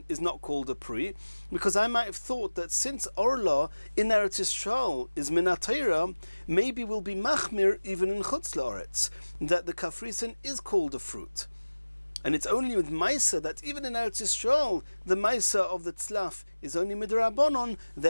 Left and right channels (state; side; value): inverted; both; correlation -1.00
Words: is not called a pri, because I might have thought that since orlo in Eretz Yisrael is min haTorah, maybe we'll be machmir even in chutz loretz, that the kafrisin is called a fruit. And it's only with Maisa that even in Eretz Yisrael, the Maisa of the tzlaf is only midrabanon,